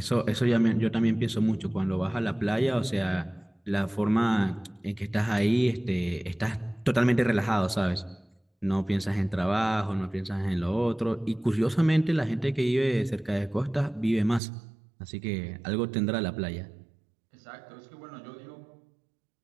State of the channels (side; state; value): left; drops out; at 14.4 s